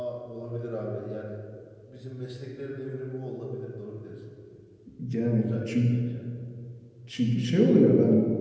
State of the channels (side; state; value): both; identical; correlation 1.00